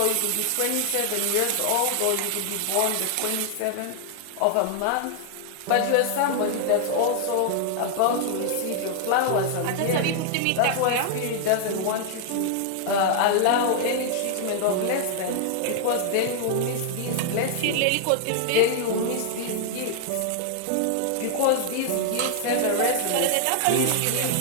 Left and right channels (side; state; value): both; different; correlation -0.01